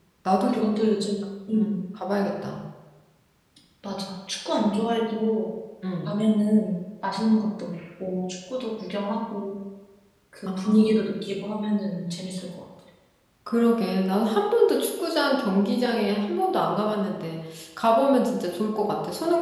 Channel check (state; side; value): identical; both; correlation 1.00